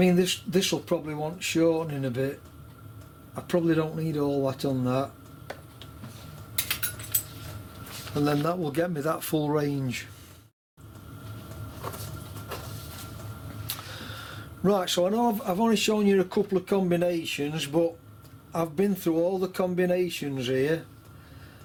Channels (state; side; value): identical; both; correlation 1.00